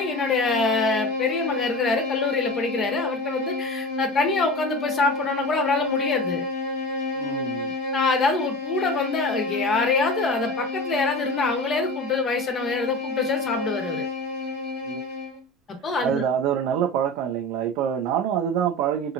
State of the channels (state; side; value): normal; both; correlation 0.31